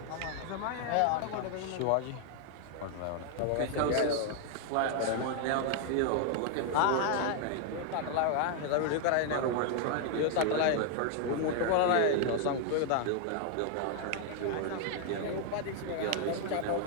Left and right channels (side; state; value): both; different; correlation 0.00